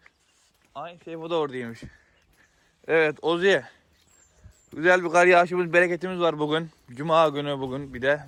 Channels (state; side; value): identical; both; correlation 1.00